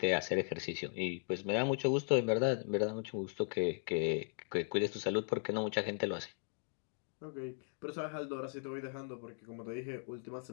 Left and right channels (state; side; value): silent; right; 53 dB below the other